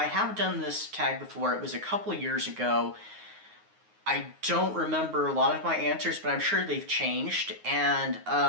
have done this tag before. It was a couple of years ago. I don't remember a lot of my answers, but I'm sure they've changed. And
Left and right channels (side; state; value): left; late; 9.5 ms